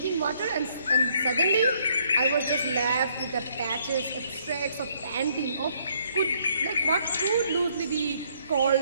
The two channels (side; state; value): both; inverted; correlation -0.67